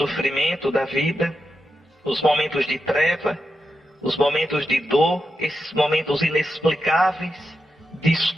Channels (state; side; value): normal; both; correlation 0.88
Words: da vida, os momentos de treva, os momentos de dor, esses momentos inexplicáveis, de